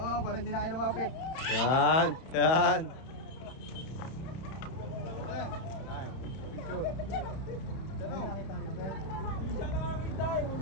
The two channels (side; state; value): right; late; 31 ms